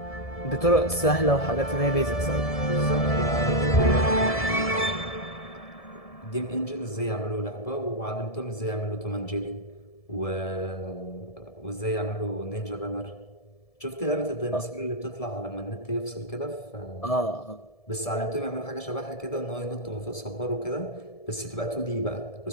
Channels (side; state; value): right; late; 1.7 ms